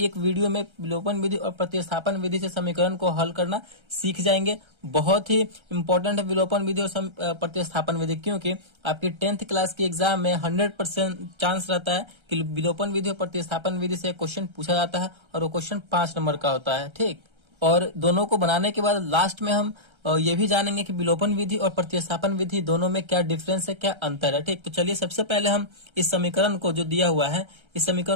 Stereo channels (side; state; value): left; late; 1.3 ms